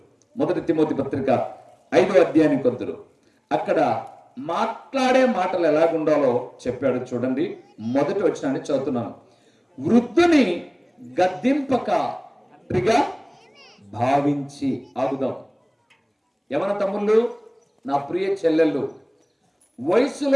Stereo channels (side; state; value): both; identical; correlation 1.00